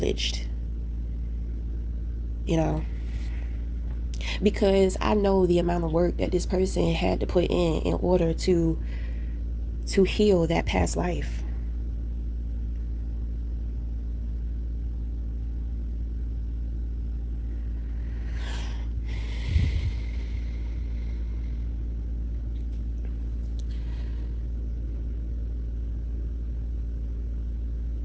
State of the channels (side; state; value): both; identical; correlation 1.00